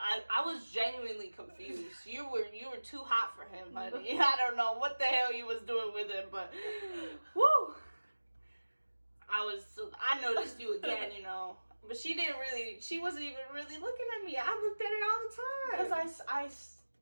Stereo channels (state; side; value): inverted; both; correlation -1.00